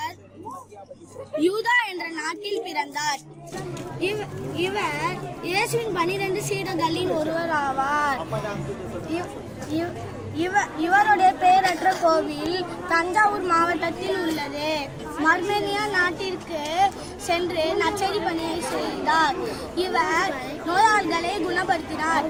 யூதா என்ற நாட்டில் பிறந்தார். இவர் இயேசுவின் 12 சீடர்களில் ஒருவர் ஆவார். இவருடைய பெயரற்ற கோவில் தஞ்சாவூர் மாவட்டத்தில் உள்ளது. மர்மேனியா நாட்டிற்கு சென்று நற்செய்தி பணியை செய்தார். இவர் நோயாளிகளை குணப்படுத்தினார்,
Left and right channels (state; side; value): identical; both; correlation 1.00